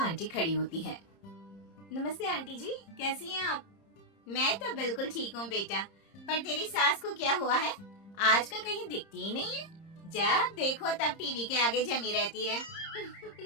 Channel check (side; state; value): right; late; 30 ms